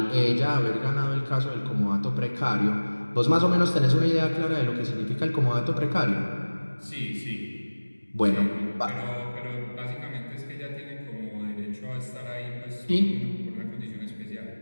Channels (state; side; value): inverted; both; correlation -1.00